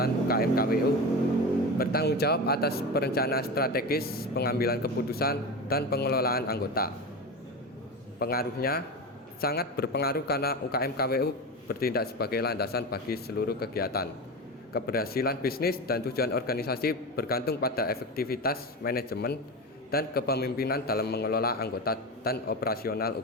UKM KWU, bertanggung jawab atas perencanaan strategis, pengambilan keputusan, dan pengelolaan anggota. Pengaruhnya sangat berpengaruh karena UKM KWU bertindak sebagai landasan bagi seluruh kegiatan. Keberhasilan bisnis dan tujuan organisasi bergantung pada efektivitas manajemen dan kepemimpinan dalam mengelola anggota dan operasional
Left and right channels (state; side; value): normal; both; correlation 0.23